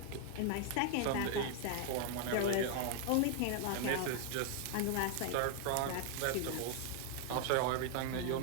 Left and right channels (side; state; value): both; different; correlation 0.00